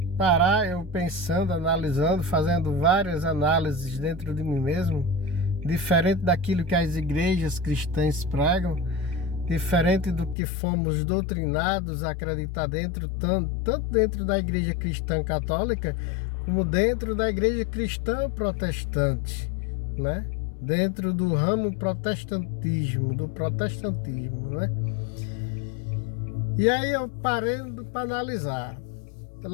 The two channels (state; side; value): drops out; right; at 10.4 s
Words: analisando, fazendo várias análises dentro de mim mesmo, diferente daquilo que as igrejas cristãs pregam, diferente do que fomos doutrinados a acreditar tanto dentro da igreja cristã católica, como dentro da igreja cristã protestante, né? Dentro do ramo do protestantismo, né? E aí eu parando para analisar.